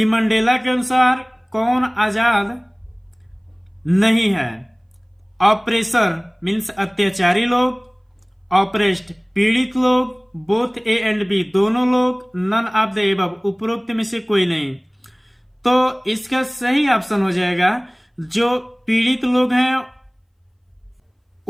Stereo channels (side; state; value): both; identical; correlation 1.00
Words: मंडेला के अनुसार कौन आजाद नहीं है। ऑपरेसर मीन्स अत्याचारी लोग, ऑपरेस्ड पीड़ित लोग, बोथ ए एंड बी दोनों लोग, नन ऑफ द एबव उपरोक्त में से कोई नहीं। तो इसका सही ऑप्शन हो जाएगा जो पीड़ित लोग हैं